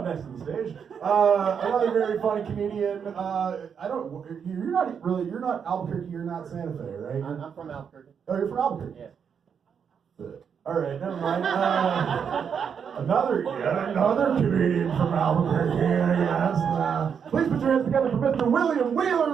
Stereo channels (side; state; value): left; quieter; 7.1 dB